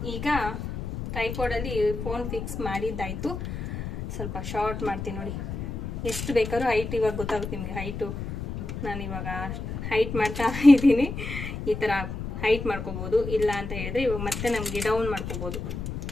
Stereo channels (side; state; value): left; noise; rumble, 6 dB below the sound